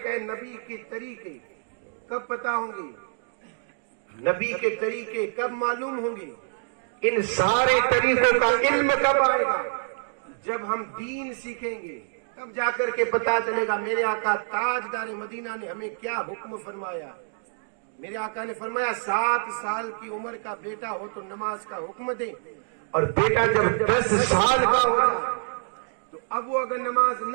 ہے، نبی کے طریقے کب پتا ہوں گے؟ نبی کے طریقے کب معلوم ہوں گے؟ ان سارے طریقوں کا علم کب آئے گا؟ جب ہم دین سیکھیں گے، تب جا کر کے پتا چلے گا میرے آقا تاجدار مدینہ نے ہمیں کیا حکم فرمایا۔ میرے آقا نے فرمایا 7 سال کی عمر کا بیٹا ہو تو نماز کا حکم دے، اور بیٹا جب 10 سال کا ہو جائے تو اب وہ اگر نماز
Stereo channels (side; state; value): left; silent; digital silence